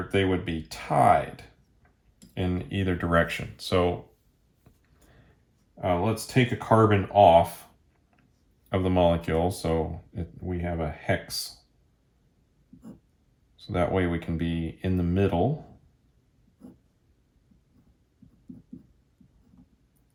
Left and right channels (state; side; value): identical; both; correlation 1.00